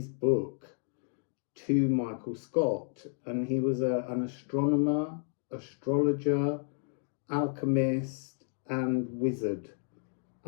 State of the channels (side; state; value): right; silent; 57 dB below the other